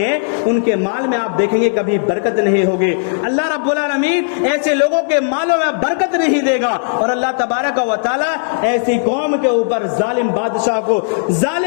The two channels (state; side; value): silent; right; digital silence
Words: ان کے مال میں آپ دیکھیں گے کبھی برکت نہیں ہوگی۔ اللہ رب العالمین ایسے لوگوں کے مالوں میں برکت نہیں دے گا، اور اللہ تبارک و تعالی ایسی قوم کے اوپر ظالم بادشاہ کو،